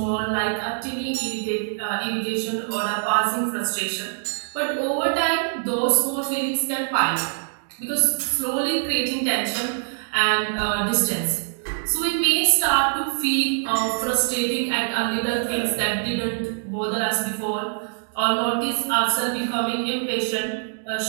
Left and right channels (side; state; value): left; silent; digital silence